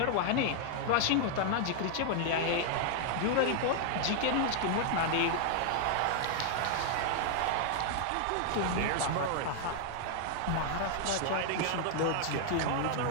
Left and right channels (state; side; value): different; both; correlation 0.00